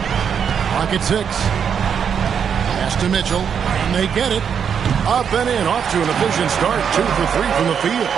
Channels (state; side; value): quieter; left; 7.4 dB